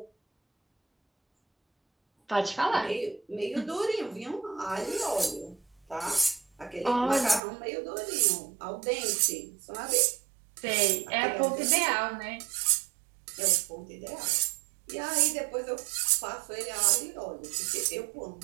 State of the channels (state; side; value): drops out; left; at 7.4 s